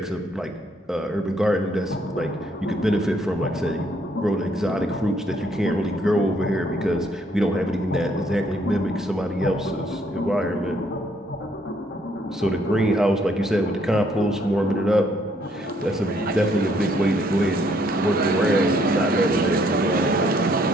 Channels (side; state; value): both; normal; correlation 0.68